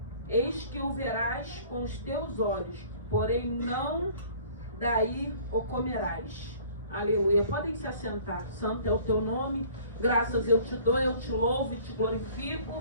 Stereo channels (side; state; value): both; inverted; correlation -0.51